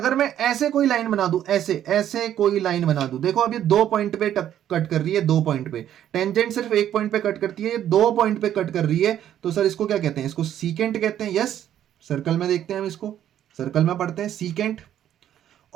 मैं ऐसे कोई लाइन बना दूं, ऐसे ऐसे कोई लाइन बना दूं, देखो अब ये 2 पॉइंट पे कट कर रही है, 2 पॉइंट पे। टेंजेंट सिर्फ 1 पॉइंट पे कट करती है, ये 2 पॉइंट पे कट कर रही है, तो सर इसको क्या कहते हैं? इसको सीकेंट कहते हैं। यस, सर्कल में देखते हैं हम इसको, सर्कल में पढ़ते हैं सीकेंट।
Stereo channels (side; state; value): left; quieter; 10.9 dB